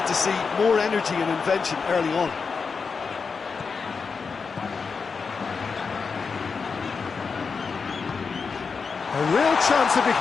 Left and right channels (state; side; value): quieter; right; 5.2 dB